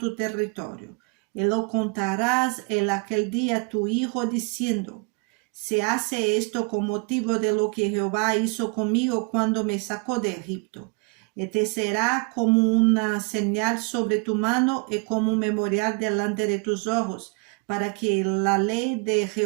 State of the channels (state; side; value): quieter; left; 33.1 dB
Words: territorio. Y lo contarás en aquel día a tu hijo, diciendo: Se hace esto con motivo de lo que Jehová hizo conmigo cuando me sacó de Egipto. Y te será como una señal sobre tu mano y como un memorial delante de tus ojos, para que la ley de